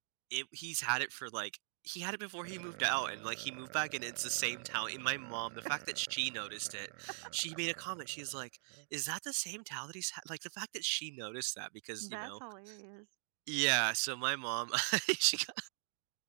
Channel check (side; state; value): left; silent; digital silence